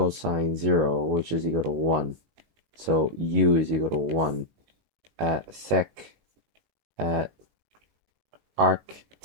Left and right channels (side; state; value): left; late; 18 ms